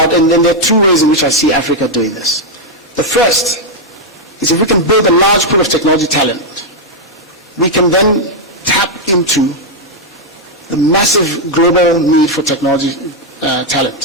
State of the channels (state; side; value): normal; both; correlation -0.01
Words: and then there are two ways in which I see Africa doing this. The first is if we can build a large pool of technology talent, we can then tap into the massive global need for technology